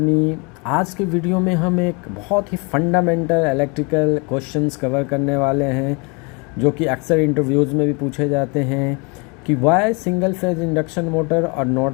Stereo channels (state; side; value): quieter; right; 30.7 dB